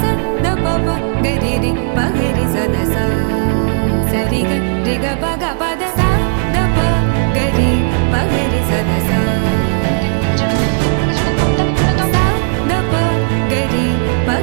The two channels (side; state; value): left; silent; digital silence